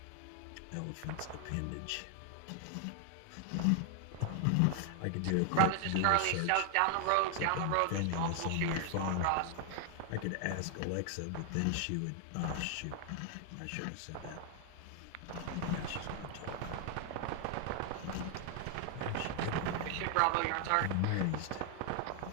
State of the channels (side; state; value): both; different; correlation 0.00